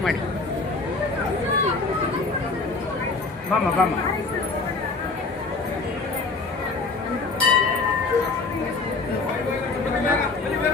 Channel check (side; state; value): right; quieter; 3.9 dB